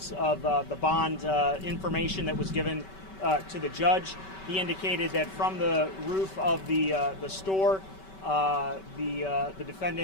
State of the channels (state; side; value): late; right; 5.2 ms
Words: of the bond information that was given to the judge. He indicated that from the roof of the store, the